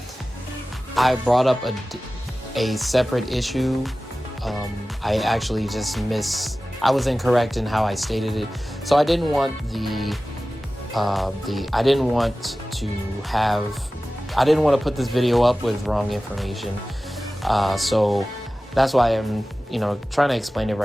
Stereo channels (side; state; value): both; normal; correlation 0.96